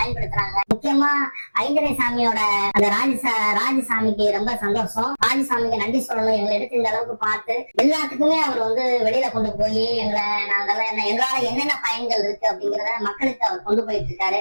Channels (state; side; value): inverted; both; correlation -1.00